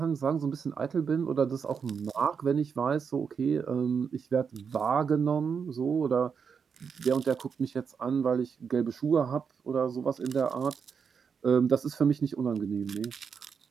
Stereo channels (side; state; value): left; quieter; 6.3 dB